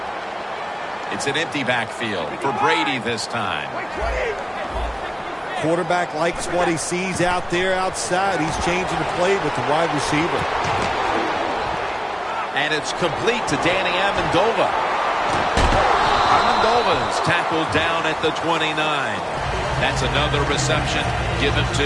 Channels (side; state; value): both; identical; correlation 1.00